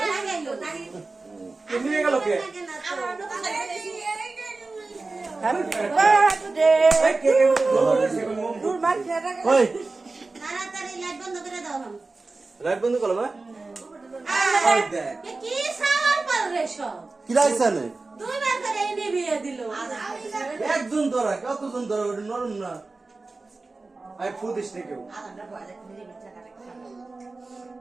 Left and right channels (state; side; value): quieter; left; 3.6 dB